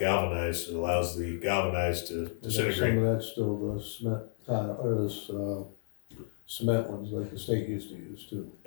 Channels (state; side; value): silent; right; digital silence